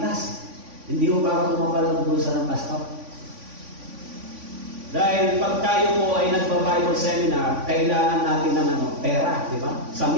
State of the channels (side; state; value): left; late; 3.5 ms